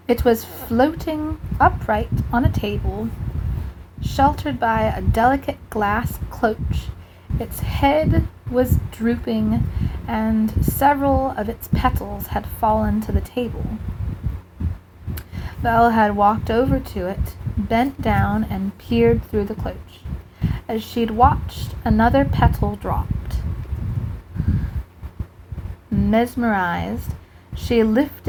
It was floating upright on a table, sheltered by a delicate glass cloche. Its head was drooping, and several of its petals had fallen to the table. Belle had walked over to it, bent down, and peered through the cloche. As she'd watched, another petal dropped. Mesmerized, she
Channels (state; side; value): identical; both; correlation 1.00